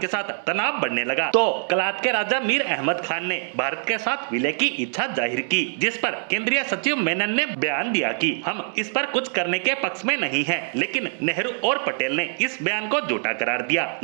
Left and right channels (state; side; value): silent; left; 55 dB below the other